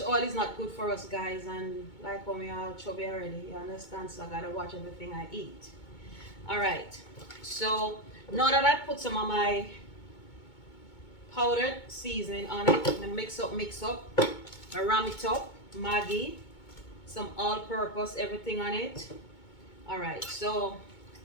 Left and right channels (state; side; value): late; right; 2.2 ms